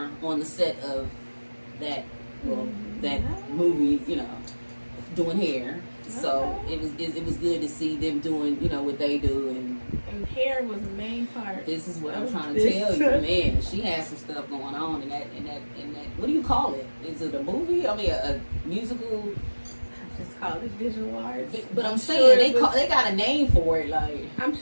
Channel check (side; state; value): both; inverted; correlation -1.00